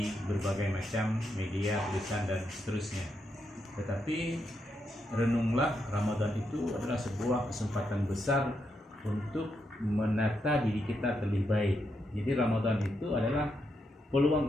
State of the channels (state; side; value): normal; both; correlation 0.82